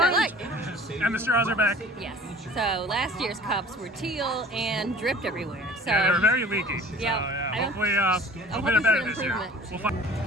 like. And the straws are back. Yes. So last year's cups were teal and dripped everywhere. So Yeah, they were very leaky. So, Yeah, hopefully, I'm they're hoping better for this year. improvement. We'll find.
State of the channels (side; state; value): both; normal; correlation 0.47